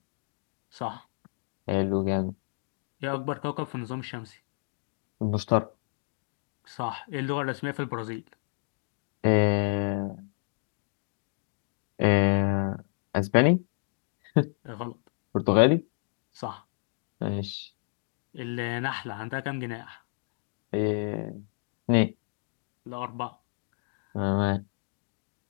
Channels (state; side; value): silent; right; digital silence